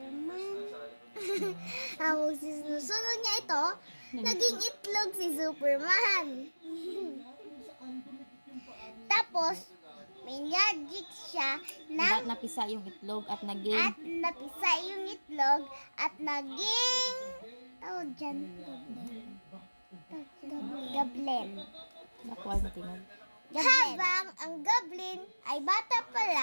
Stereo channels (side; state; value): both; inverted; correlation -1.00